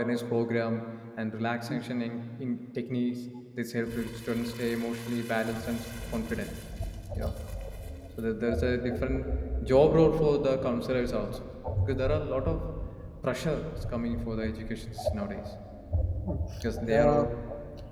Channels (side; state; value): both; identical; correlation 1.00